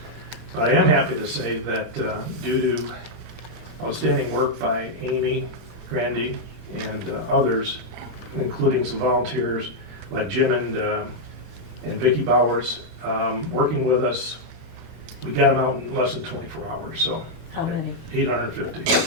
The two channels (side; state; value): both; normal; correlation -0.03